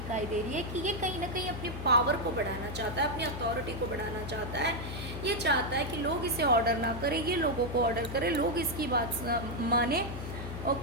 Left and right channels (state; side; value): noise; left; hum, 8 dB below the sound